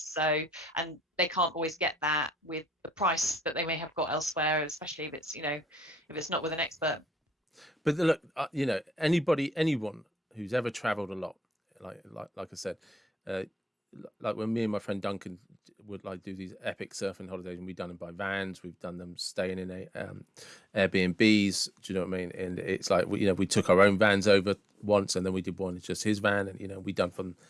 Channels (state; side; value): normal; both; correlation 0.82